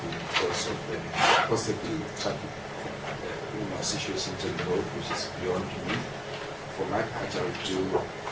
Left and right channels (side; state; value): both; identical; correlation 1.00